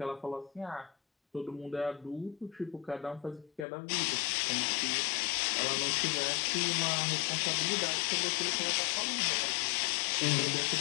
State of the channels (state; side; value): drops out; right; at 3.7 s